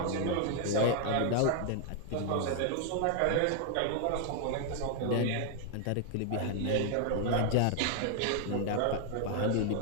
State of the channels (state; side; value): different; both; correlation 0.00